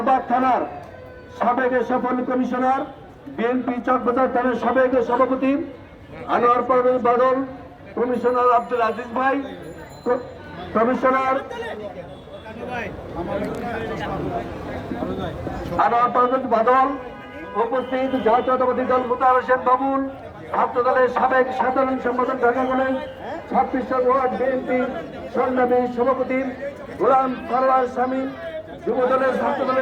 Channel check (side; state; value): both; identical; correlation 1.00